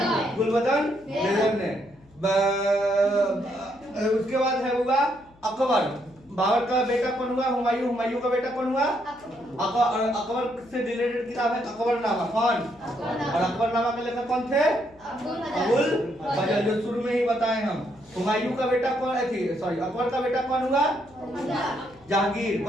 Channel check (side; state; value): left; noise; hum, 28 dB below the sound